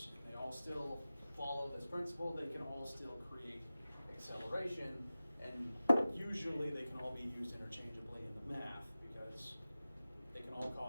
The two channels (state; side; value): inverted; both; correlation -0.96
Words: They all still follow this principle. They can all still create acceleration, and usually they can all be used interchangeably in the math because they can all